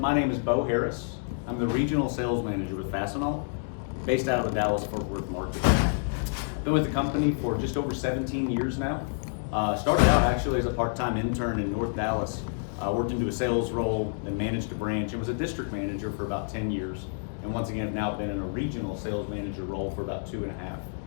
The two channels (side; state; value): right; silent; digital silence